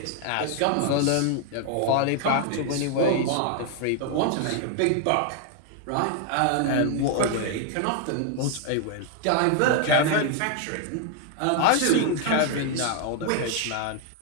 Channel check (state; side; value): different; both; correlation 0.00